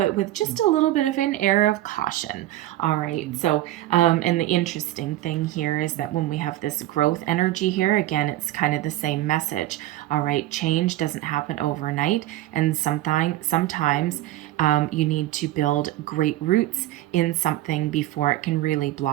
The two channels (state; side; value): quieter; left; 15.0 dB